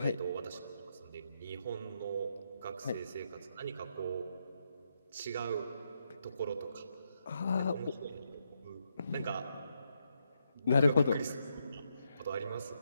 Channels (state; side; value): inverted; both; correlation -0.80